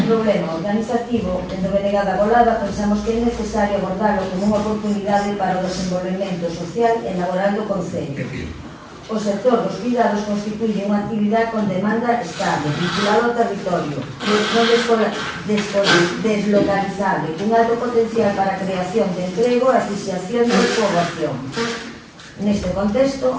problema organizativo, dentro de Negada Golada, pensamos que é necesario abordarlo como unha oportunidade para o desenvolvemento social e laboral do Concello. O sector dos cuidados constituye unha actividade con demanda estable, vinculada ao territorio, deslocalizable, con alto potencial para a creación de emprego e asociación de poboación. Neste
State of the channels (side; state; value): both; identical; correlation 1.00